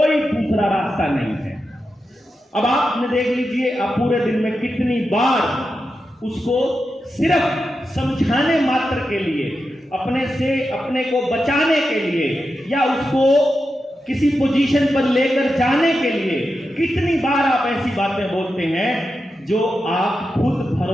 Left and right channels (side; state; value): both; normal; correlation 0.89